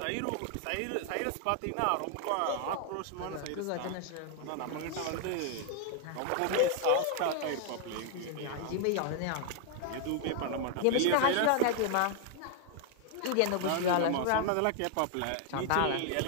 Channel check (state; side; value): different; both; correlation 0.00